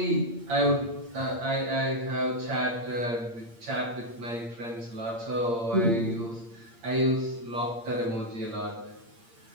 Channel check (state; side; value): late; left; 8.7 ms